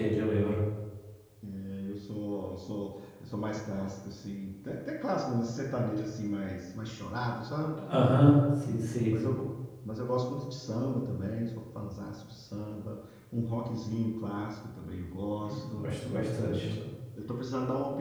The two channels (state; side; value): identical; both; correlation 1.00